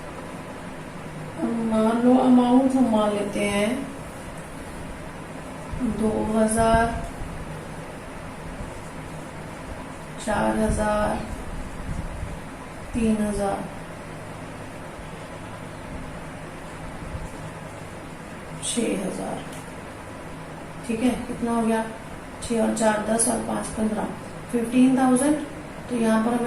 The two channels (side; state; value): both; identical; correlation 1.00